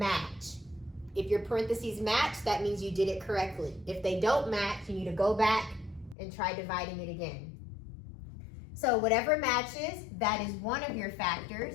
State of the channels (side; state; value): right; drops out; at 6.2 s